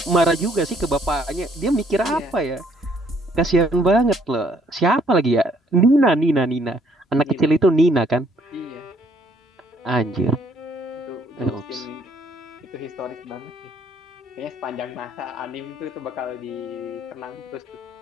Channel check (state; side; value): normal; both; correlation 0.65